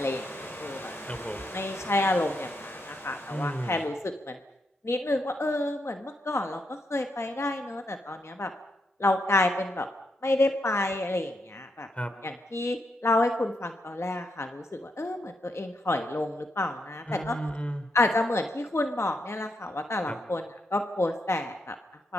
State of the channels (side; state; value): both; normal; correlation 0.81